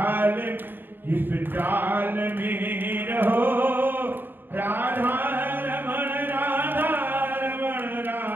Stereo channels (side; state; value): left; late; 0.095 ms